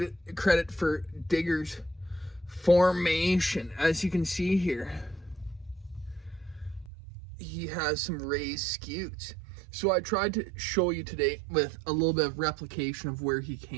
for Digger's formation. As you can see here, he has some raised scutes. So I tried to show you today with a little bit of replication of where he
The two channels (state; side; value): drops out; left; at 6.9 s